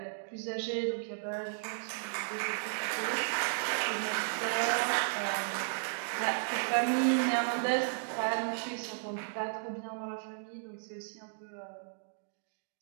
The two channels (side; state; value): left; silent; digital silence